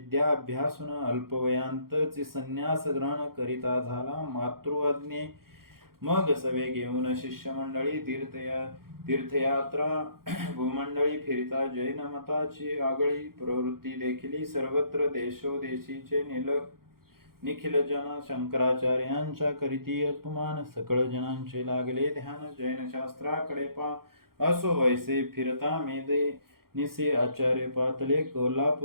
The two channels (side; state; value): left; late; 0.93 ms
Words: अभ्यासून अल्पवयांतची संन्यास ग्रहण करिता झाला मातृआज्ञे मग सवे घेऊन शिष्यमंडळी तीर्थयात्रा भूमंडळी फिरता जैन मताची आगळी प्रवृत्ती देखील सर्वत्र देशोदेशीचे निखिल जन शंकराचार्यांच्या करीती अपमान सकळ जनांचे लागले ध्यान जैन शास्त्राकडे पा असो ऐसे फिरता मेदे निसे आचार्य पातले